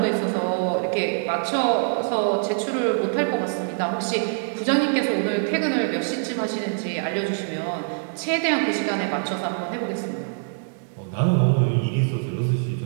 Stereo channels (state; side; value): silent; left; digital silence